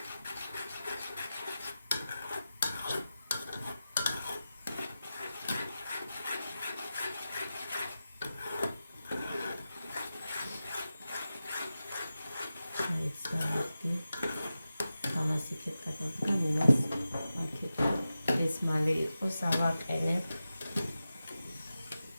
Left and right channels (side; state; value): both; inverted; correlation -0.93